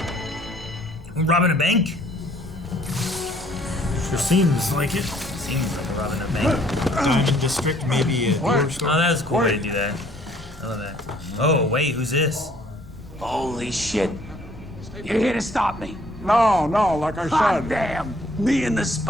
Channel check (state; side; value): normal; both; correlation 0.61